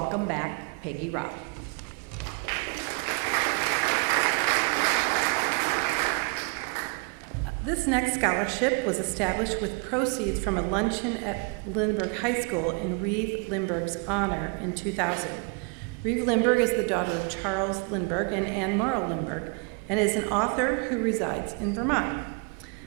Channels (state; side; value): quieter; left; 32.5 dB